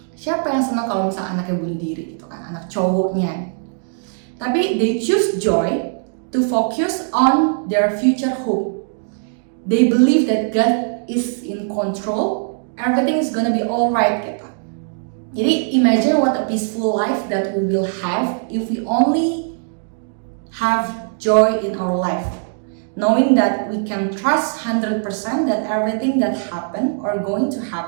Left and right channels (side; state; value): left; silent; 66 dB below the other